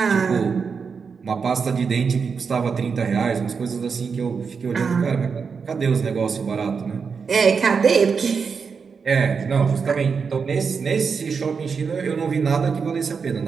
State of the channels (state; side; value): quieter; left; 5.7 dB